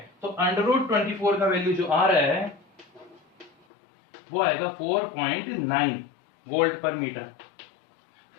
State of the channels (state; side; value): drops out; right; at 3.5 s